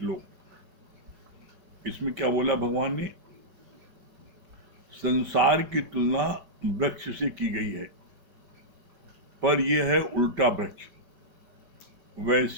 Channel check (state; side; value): late; left; 5.2 ms